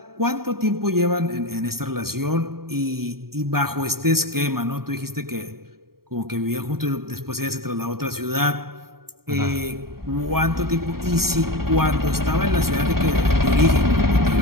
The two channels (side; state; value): left; late; 0.94 ms